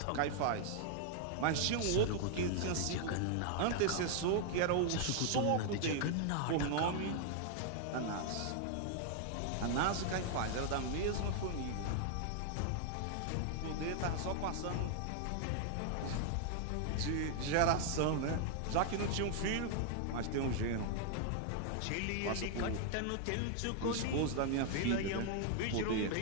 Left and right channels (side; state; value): both; different; correlation 0.00